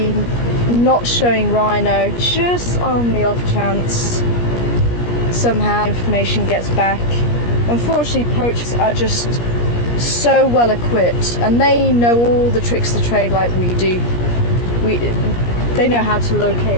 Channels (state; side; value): late; right; 17 ms